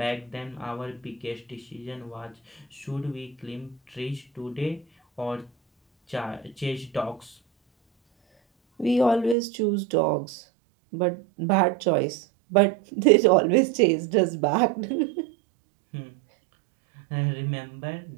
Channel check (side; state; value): left; drops out; at 9.3 s